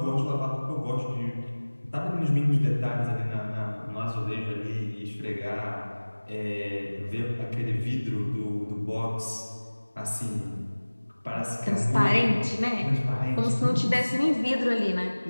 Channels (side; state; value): both; inverted; correlation -1.00